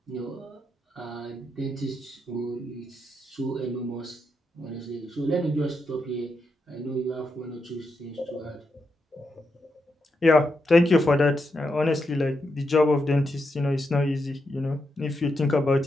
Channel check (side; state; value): both; normal; correlation 0.83